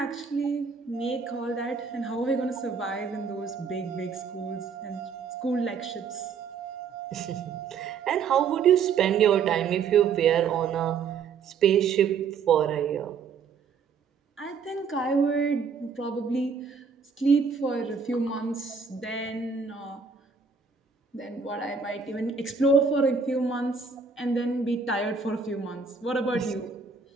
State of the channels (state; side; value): quieter; left; 5.7 dB